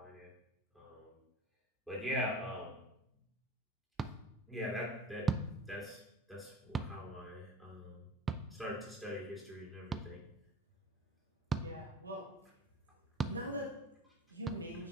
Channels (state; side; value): normal; both; correlation 0.37